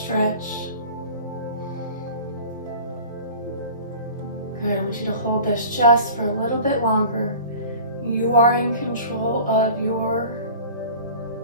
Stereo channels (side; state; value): both; inverted; correlation -0.42